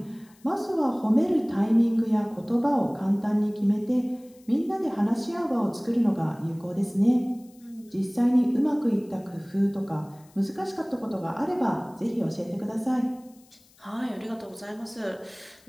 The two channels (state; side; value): noise; left; hiss, 29 dB below the sound